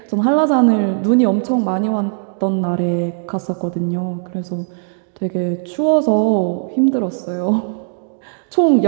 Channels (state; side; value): silent; left; digital silence